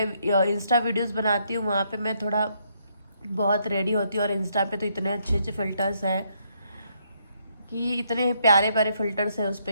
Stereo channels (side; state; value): both; inverted; correlation -0.73